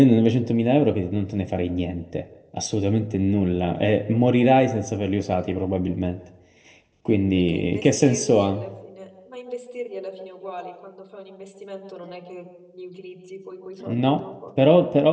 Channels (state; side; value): identical; both; correlation 1.00